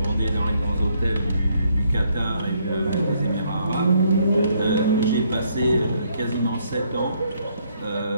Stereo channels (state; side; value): inverted; both; correlation -0.71